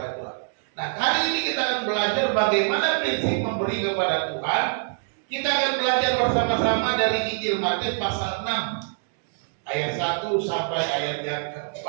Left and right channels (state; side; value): silent; left; digital silence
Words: Tuhan. Nah, kali ini kita akan belajar bagaimana prinsip memberi kepada Tuhan. Kita akan belajar bersama-sama dari Injil Matius pasal 6. Ayat 1 sampai ayat yang